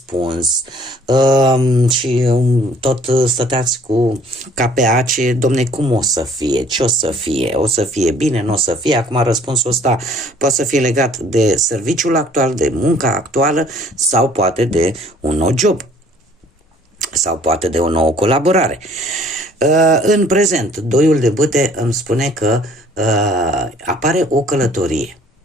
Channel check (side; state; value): both; normal; correlation 0.56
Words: și tot stăteați cu ca pe ace, domne, cum o să fie, ce o să fie, o să fie bine, nu o să fie. Acum răspunsul ăsta poate să fie legat de serviciul actual, de munca actuală sau poate de un nou job sau poate de o nouă colaborare. În prezent, doiul de bâte îmi spune că apare o călătorie.